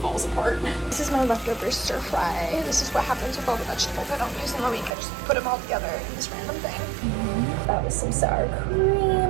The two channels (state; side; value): drops out; left; at 4.9 s